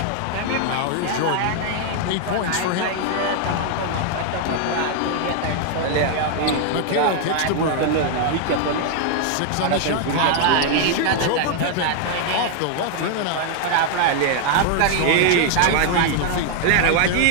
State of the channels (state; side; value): different; both; correlation 0.00